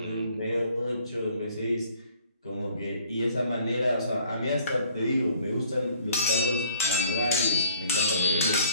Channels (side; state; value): both; inverted; correlation -0.57